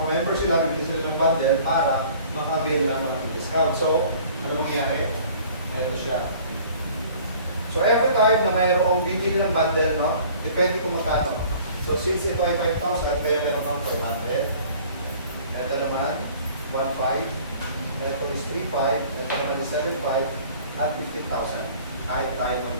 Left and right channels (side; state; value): both; inverted; correlation -0.50